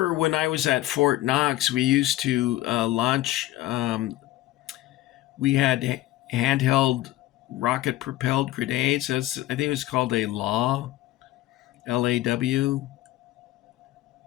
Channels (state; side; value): quieter; right; 16.0 dB